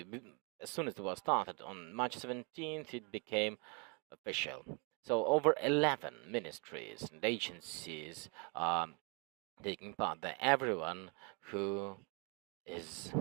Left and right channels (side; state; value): left; quieter; 33.6 dB